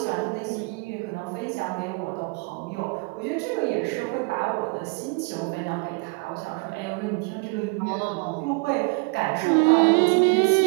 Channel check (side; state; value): left; quieter; 31.6 dB